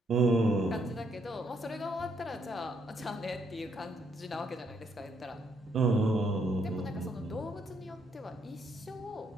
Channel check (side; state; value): both; normal; correlation 0.73